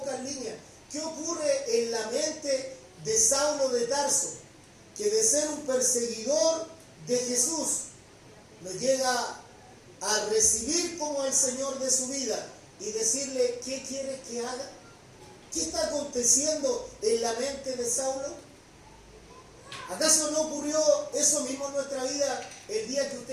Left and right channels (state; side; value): identical; both; correlation 1.00